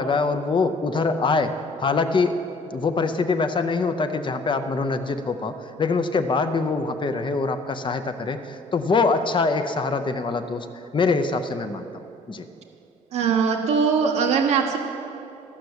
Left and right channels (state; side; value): normal; both; correlation 0.51